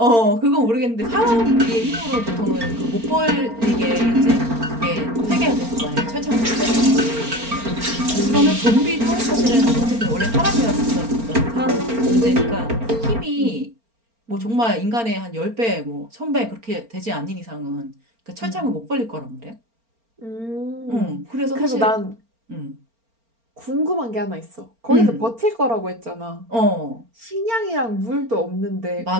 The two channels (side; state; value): left; late; 4.4 ms